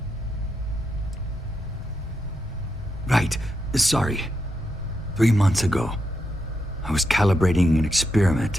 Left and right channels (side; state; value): both; normal; correlation 0.83